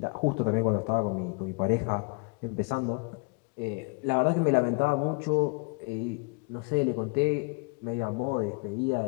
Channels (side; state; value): right; quieter; 31.9 dB